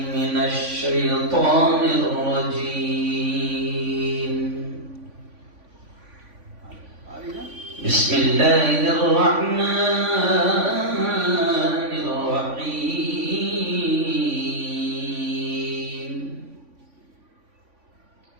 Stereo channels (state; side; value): late; left; 3.5 ms